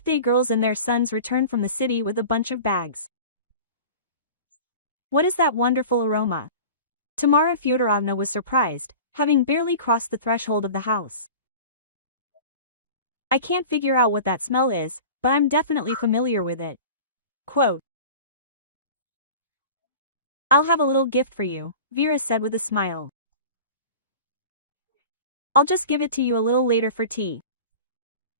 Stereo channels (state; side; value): inverted; both; correlation -0.37